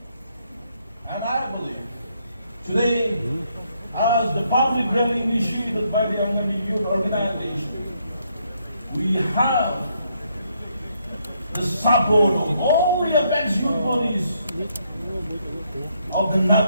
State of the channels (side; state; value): both; inverted; correlation -0.74